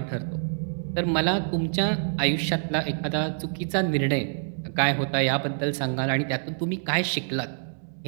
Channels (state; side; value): silent; left; digital silence